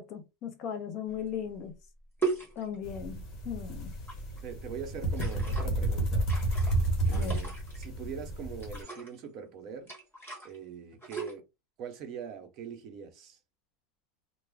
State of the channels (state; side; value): normal; both; correlation 0.39